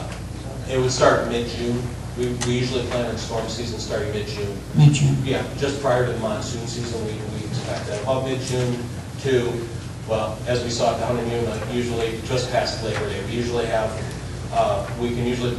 It would start mid-June. We usually plan on storm season starting mid-June. Mid-June? Yeah, just prior to the monsoon season, we expect that. About mid-June to, well, as we saw down in Yuma, usually just past Labor Day. We usually have, we can usually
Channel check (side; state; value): both; identical; correlation 1.00